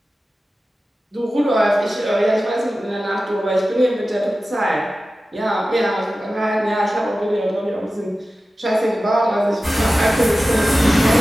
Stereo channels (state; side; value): normal; both; correlation 0.95